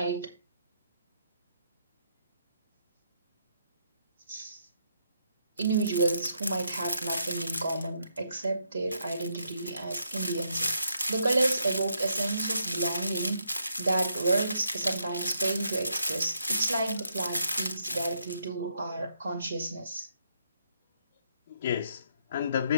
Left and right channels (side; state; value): both; inverted; correlation -0.76